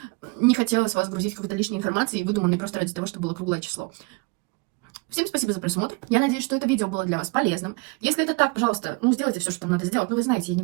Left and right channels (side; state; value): left; quieter; 28.3 dB